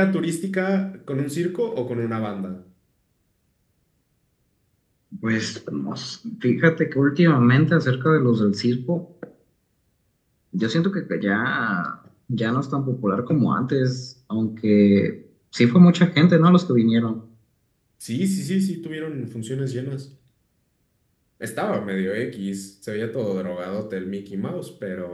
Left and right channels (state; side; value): identical; both; correlation 1.00